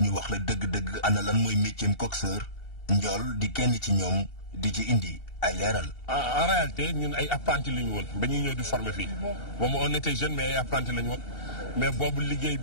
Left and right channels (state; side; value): late; right; 2.7 ms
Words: ñu wax la dëgg-dëgg ana lan mooy métier coxeur njool di kenn ci ñoom di ci indi ay leeral. en réalité ñun ay apprenti la ñu woon ba ñuy ñëw di former fii moom on était jeune mais ay apprenti la ñu woon mais boobu liggéey